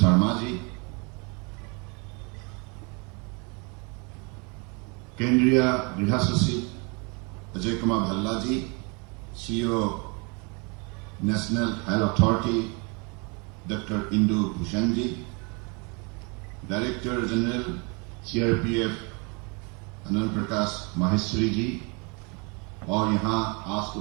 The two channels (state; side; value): quieter; left; 32.1 dB